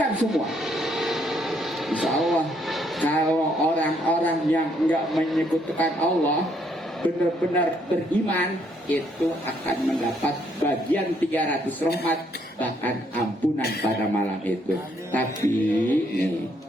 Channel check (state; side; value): normal; both; correlation 0.70